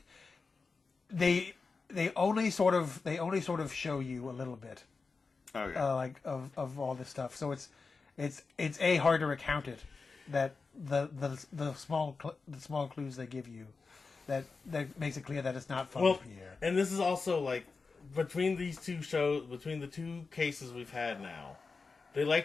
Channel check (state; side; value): quieter; right; 4.4 dB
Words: They only sort of show you a little bit, like of all this stuff. So it's hard to recount it, that the small clues they give you, that makes it clear that it's not Father Pierre. And this is also like between the two cases we've had now, they